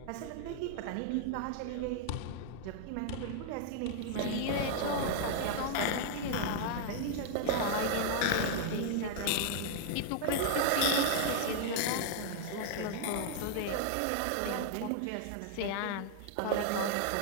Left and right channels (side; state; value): both; different; correlation -0.01